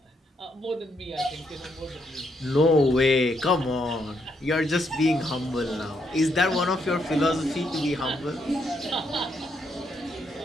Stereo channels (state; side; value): normal; both; correlation 0.76